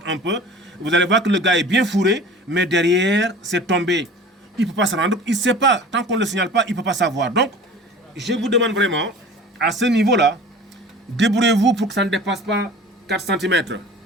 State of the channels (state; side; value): normal; both; correlation 0.41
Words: un peu. Vous allez voir que le gars est bien fourré, mais derrière, c'est tombé. Il ne peut pas se rendre, il ne sait pas. Tant qu'on ne le signale pas, il ne peut pas savoir. Donc, je vous demande vraiment, à ce niveau-là, débrouillez-vous pour que ça ne dépasse pas 4 cm.